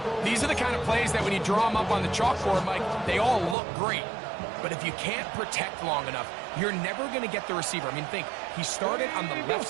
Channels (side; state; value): left; drops out; at 3.6 s